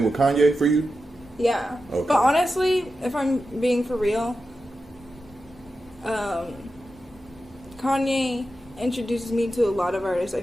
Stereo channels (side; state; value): both; normal; correlation 0.91